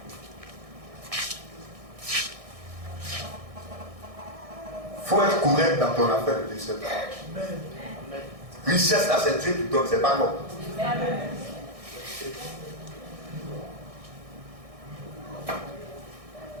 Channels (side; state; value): left; late; 1.6 ms